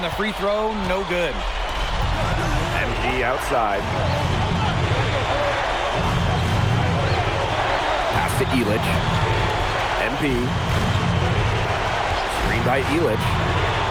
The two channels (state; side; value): identical; both; correlation 1.00